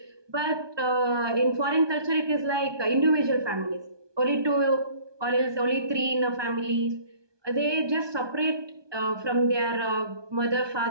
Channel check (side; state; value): left; late; 1.2 ms